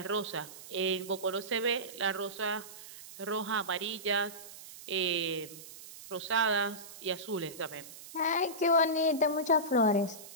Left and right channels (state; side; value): noise; right; hiss, 15 dB below the sound